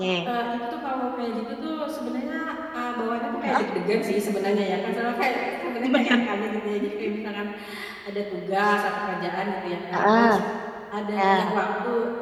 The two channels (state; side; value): identical; both; correlation 1.00